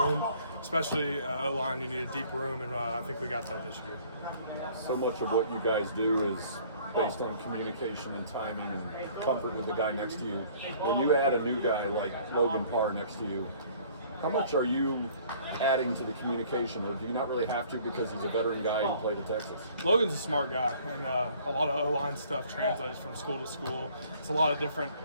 especially O-line. You need a deep room, and I think we got that this year. So much of what you guys do is based on communication and timing and comfort with the guy next to you. When you add a new guy like Logan Parr next to you, how much are you adding to the communication, or do you not really have to because he's a veteran guy who played at Texas? Logan's a smart guy, and a lot of O-line stuff translates from school to school. It's a lot of different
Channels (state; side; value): inverted; both; correlation -0.55